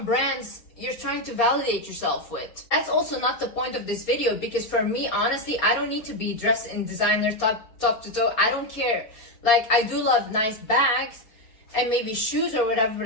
brands you're trying to validate yourself with. That's also not the point of this video, because for me, honestly, I don't need to be dressed in designer top to toe. I don't care. Like, I do love nice bags and maybe shoes or whatever,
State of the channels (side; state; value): right; late; 4.3 ms